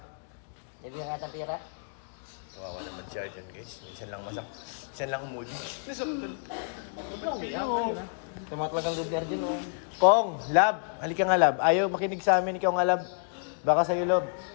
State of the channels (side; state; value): right; silent; digital silence